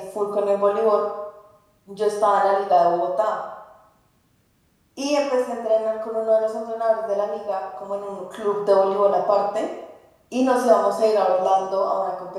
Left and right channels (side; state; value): both; identical; correlation 1.00